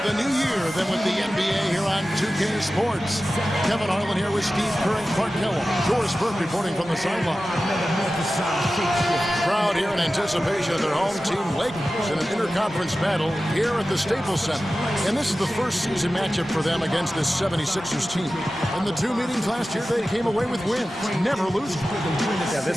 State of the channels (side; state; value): both; normal; correlation 0.95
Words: new year than with the NBA here on 2K Sports. Kevin Harlan here with Steve Kerr and Clark Kellogg. Doris Burke reporting from the sideline. Crowd here in anticipation of their home team Lakers in an interconference battle here at the Staples Center. And this is the first season matchup for them against this 76ers team. In the two meetings last year, they came away with wins, never losing. Yeah,